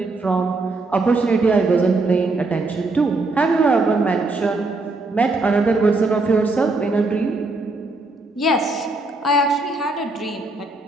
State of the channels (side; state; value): left; quieter; 3.2 dB